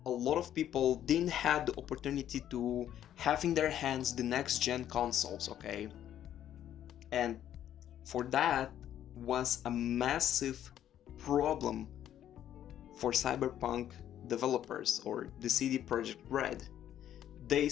a lot of people didn't have the opportunity to have in their hands the next gen consoles, okay? And for that was a massive problem for Cyberpunk developers or the CD Projekt Red. They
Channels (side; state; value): right; quieter; 11.0 dB